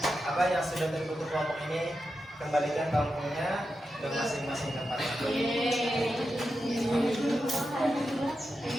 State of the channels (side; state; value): both; normal; correlation 0.89